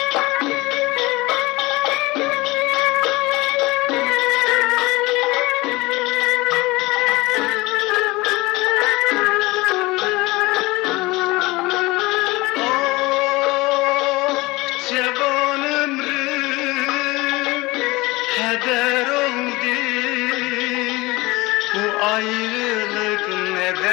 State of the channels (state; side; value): quieter; right; 21.8 dB